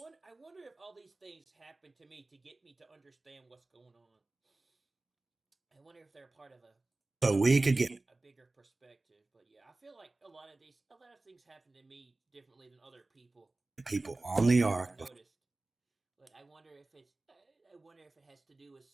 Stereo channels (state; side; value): quieter; left; 3.1 dB